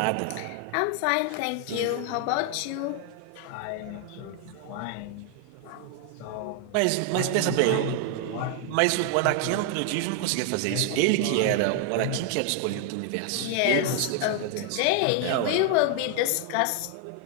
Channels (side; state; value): both; different; correlation 0.00